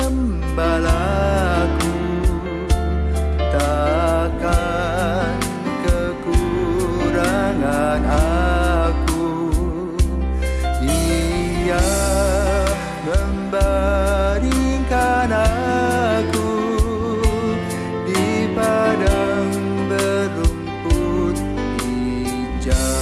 takkan kekurangan aku. Ia membaringkan aku di padang berumput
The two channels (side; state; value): both; identical; correlation 1.00